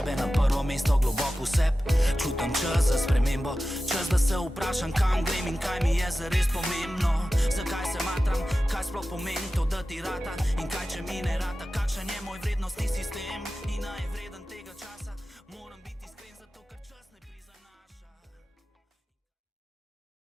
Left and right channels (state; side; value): normal; both; correlation 0.94